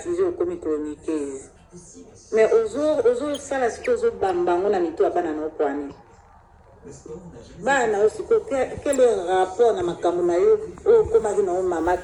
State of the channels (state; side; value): identical; both; correlation 1.00